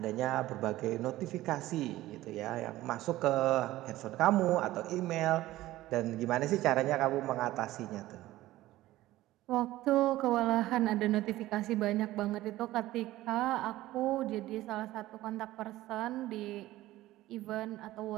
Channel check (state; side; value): quieter; left; 16.2 dB